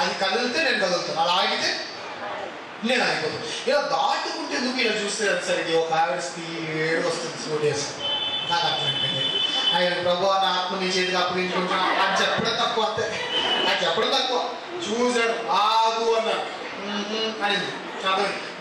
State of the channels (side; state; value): both; identical; correlation 1.00